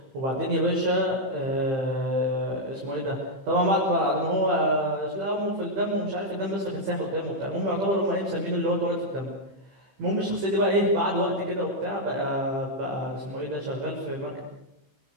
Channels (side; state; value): left; late; 15 ms